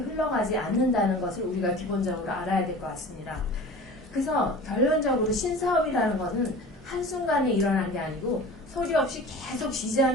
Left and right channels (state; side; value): normal; both; correlation 0.39